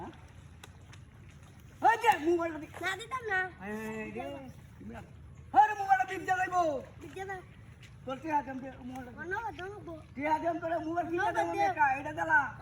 ওই দে মোবাইল দে না দিতাম না এই রে আরে মোবাইল দিন যাইবো দিতে দাও তোর কি আদম দে মোবাইল অন্য ঘর দাও গো কি আদম তোর মোবাইল কিনে দাও না এটা দিলা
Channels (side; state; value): both; identical; correlation 1.00